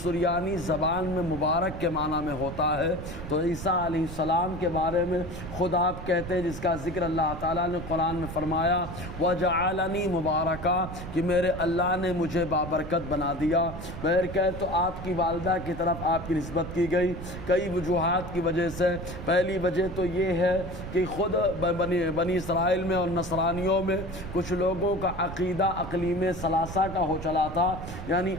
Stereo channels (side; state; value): right; noise; rumble, 9 dB below the sound